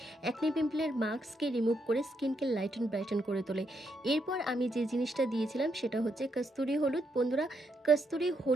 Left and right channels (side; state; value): both; normal; correlation 0.78